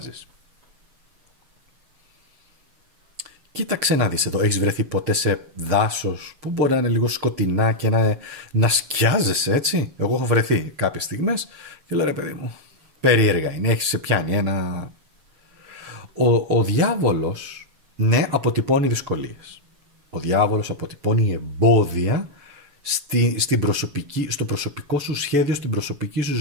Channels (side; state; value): left; late; 7.2 ms